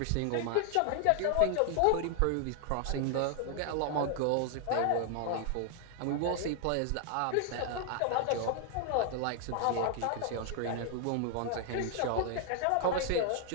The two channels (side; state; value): both; different; correlation 0.00